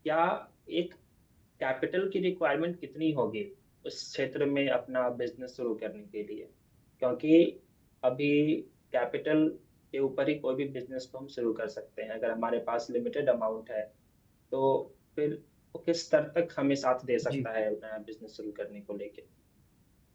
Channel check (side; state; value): both; identical; correlation 1.00